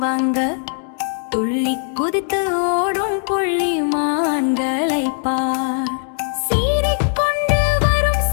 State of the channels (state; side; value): silent; right; digital silence